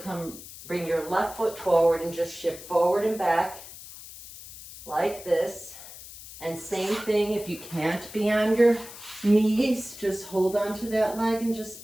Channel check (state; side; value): noise; left; hiss, 15 dB below the sound